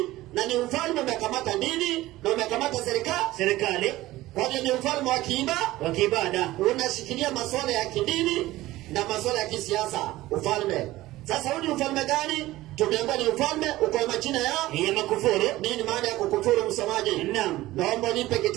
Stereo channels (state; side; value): quieter; left; 17.1 dB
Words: na ni ufalme umekamata dini na umekamata serikali. Kwa hiyo ni ufalme wa kiibada, unashikilia masuala ya kidini na masuala ya kisiasa. Ufalme. Sasa huu ni ufalme gani? Tumeambiwa ni ufalme uko na majina ya makufuru. Nini maana ya kukufuru msomaji? Naam. Naomba nipe